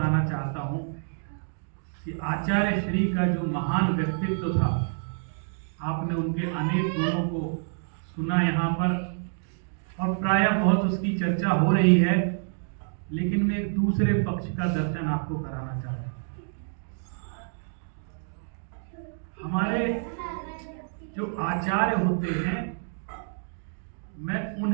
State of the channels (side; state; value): left; silent; digital silence